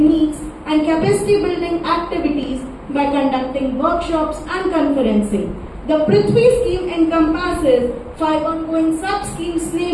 and capacity building activities by conducting workshops and conferencing. The Prithvi scheme encompasses 5 ongoing sub-schemes,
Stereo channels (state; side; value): identical; both; correlation 1.00